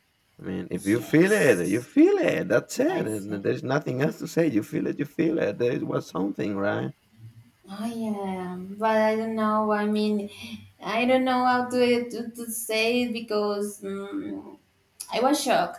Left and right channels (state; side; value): identical; both; correlation 1.00